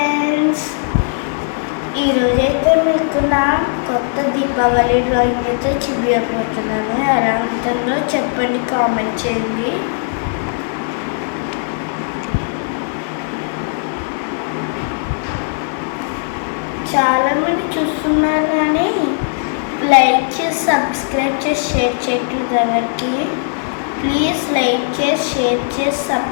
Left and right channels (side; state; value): right; silent; 61 dB below the other